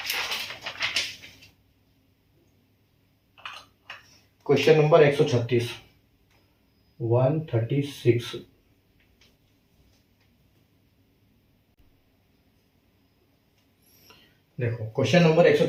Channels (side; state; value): both; identical; correlation 1.00